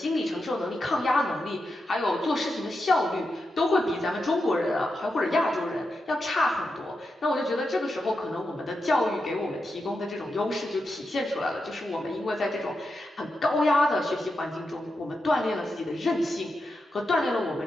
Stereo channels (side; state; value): both; normal; correlation 0.88